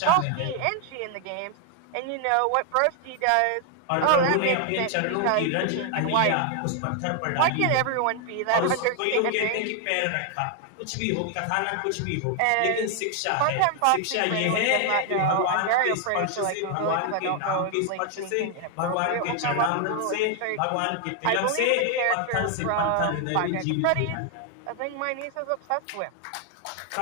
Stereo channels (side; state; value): both; different; correlation 0.00